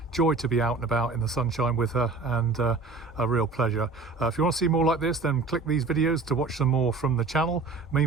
Joy to be out and about in the sunshine with her, and a real pleasure. If you want to see more like this, then click these videos to watch some more from the channel.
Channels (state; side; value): quieter; left; 4.0 dB